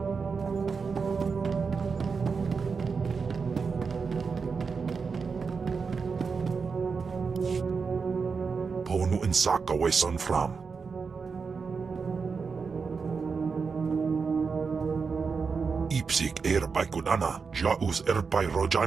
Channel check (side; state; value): left; quieter; 5.2 dB